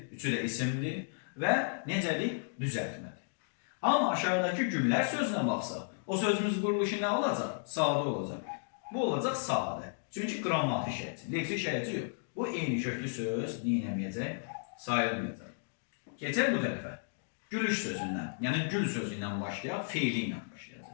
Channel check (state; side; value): silent; right; digital silence